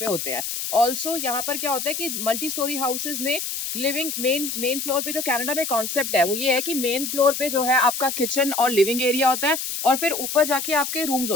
होते हैं। ऑल्सो यहाँ पर क्या होता है कि मल्टी स्टोरी हाउसेज में लिविंग मेन फ्लोर पे जो कनाडा में कॉन्सेप्ट है वो ये है कि मेन फ्लोर पे जो है आपका किचन और लिविंग एरिया होता है और फिर ऊपर जाके आपके रूम्स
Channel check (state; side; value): noise; left; hiss, 4 dB below the sound